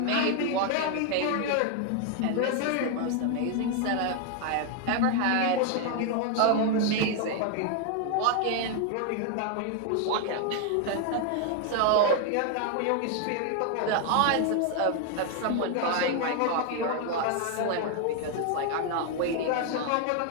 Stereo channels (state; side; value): different; both; correlation 0.00